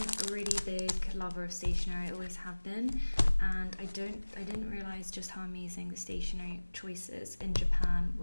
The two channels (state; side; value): inverted; both; correlation -1.00